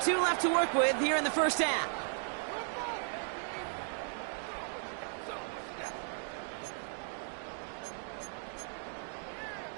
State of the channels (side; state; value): left; silent; 54 dB below the other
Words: 2 left to work with here in the first half.